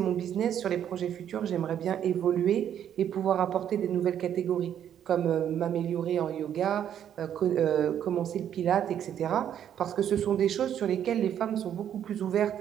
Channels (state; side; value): quieter; left; 9.8 dB